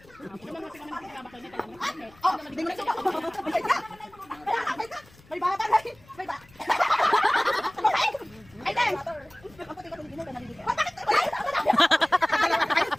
Oh, hindi mo na siya. May bata na. May bata. Ay, dahil.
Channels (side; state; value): left; noise; rumble, 27 dB below the sound